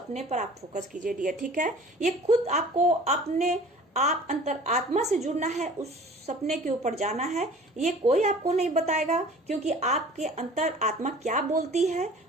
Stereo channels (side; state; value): both; normal; correlation 0.46